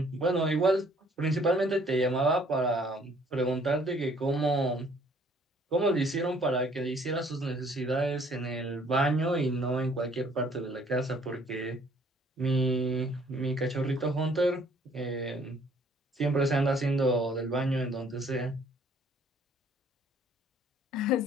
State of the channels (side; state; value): both; normal; correlation 0.60